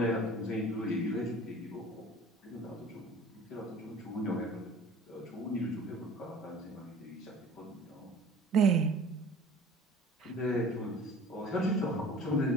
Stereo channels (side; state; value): both; normal; correlation 0.46